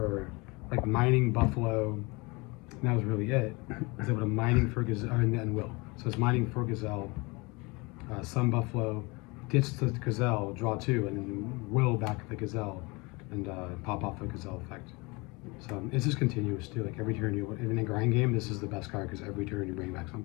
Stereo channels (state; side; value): quieter; right; 26.3 dB